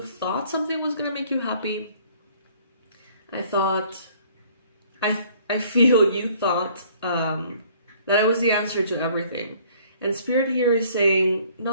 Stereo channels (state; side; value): inverted; both; correlation -0.57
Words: thought something was going to make you happy. I feel you thought that it was the answer to everything. And Spirit here is saying,